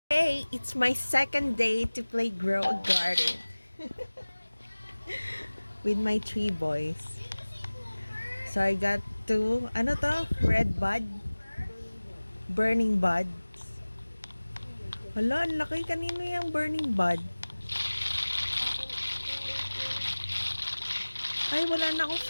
Today, it's my second day to play Grow a Garden with my 3 boys. So I got two, ano to? Red bud? Burning buds. Hala, ang laki. Kanino yung burning bud? Ay, wala na akong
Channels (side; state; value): both; inverted; correlation -1.00